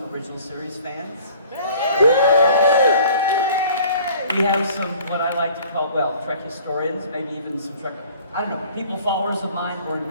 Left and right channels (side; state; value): both; inverted; correlation -0.51